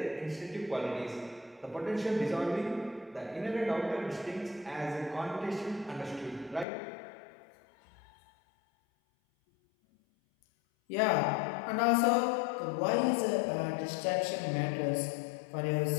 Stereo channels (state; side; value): drops out; right; at 6.7 s